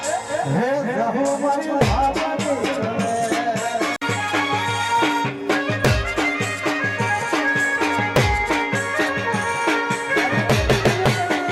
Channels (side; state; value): both; identical; correlation 1.00